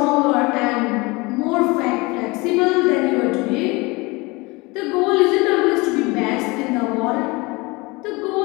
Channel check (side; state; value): right; quieter; 24.8 dB